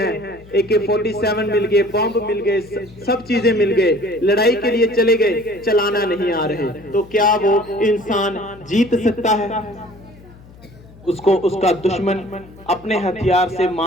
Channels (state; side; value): noise; left; hum, 22 dB below the sound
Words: AK-47 मिल गए, बॉम्ब मिल गए, सब चीजें मिल गए, लड़ाई के लिए चले गए, चलाना नहीं आ रहे, तो क्या वो इंसान जीत सकता है? उसको उसका दुश्मन अपने हथियार से